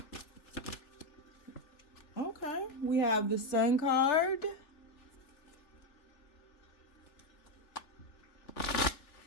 Okay, we have the Sun card.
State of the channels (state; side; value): late; right; 3.4 ms